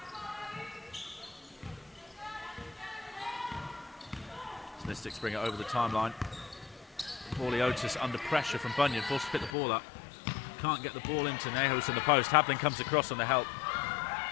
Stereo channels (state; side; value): drops out; right; at 9.5 s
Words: Mystics bring it over the timeline. Paulie Otis under pressure from Bunyan, forced to pick the ball up. Can't get the ball into Nehus in the post. Habling comes across on the help.